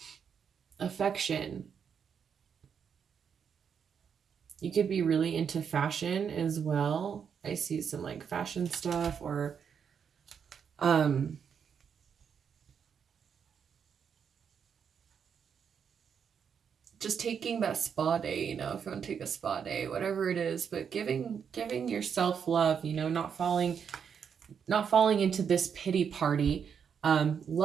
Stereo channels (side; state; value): left; quieter; 7.2 dB